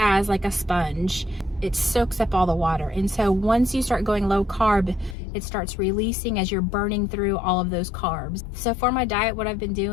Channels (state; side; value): drops out; right; at 5.2 s